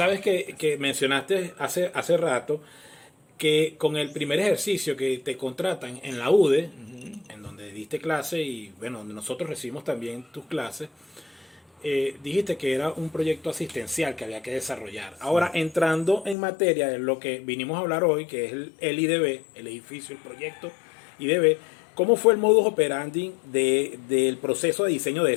que mencionaste hace rato, que con el primer ejercicio que te contratan en la UDE, en donde diste clase y, bueno, donde nosotros recibimos también tus clases, dijiste que era un proyecto asistencial que había que desarrollar. Ahora, entrando en materia de lo que vinimos a hablar hoy, que es el IDB, el edificio, el proyecto IDB, ¿cómo fue el modus operandi del proceso de diseño de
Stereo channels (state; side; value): drops out; right; at 16.4 s